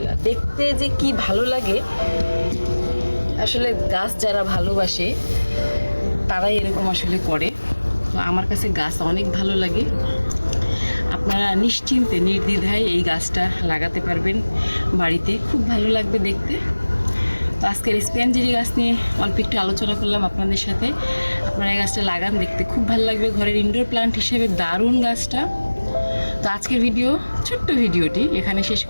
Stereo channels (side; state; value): both; inverted; correlation -1.00